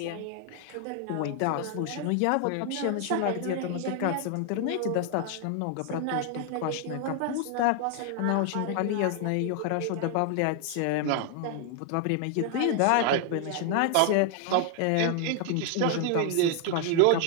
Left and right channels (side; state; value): both; different; correlation 0.00